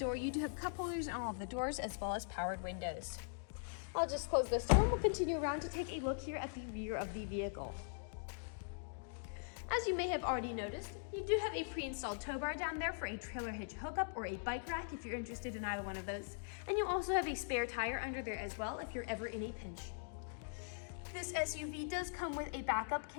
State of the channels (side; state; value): right; silent; digital silence